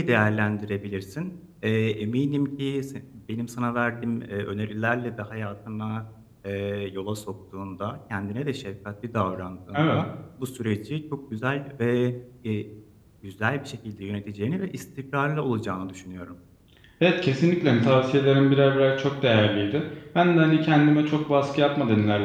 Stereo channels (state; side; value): identical; both; correlation 1.00